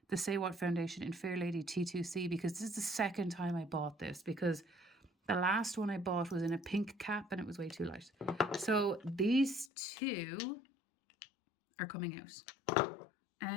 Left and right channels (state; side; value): drops out; right; at 9.7 s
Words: The Say What foundation in Fair Lady T2C, because this is the second time I bought this, because the last one I bought was in a pink cap and it was way too light. So these two are coming out.